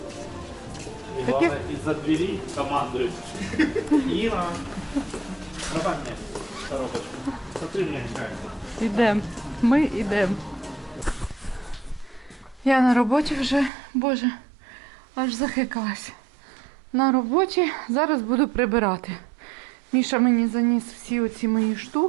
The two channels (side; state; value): left; drops out; at 13.7 s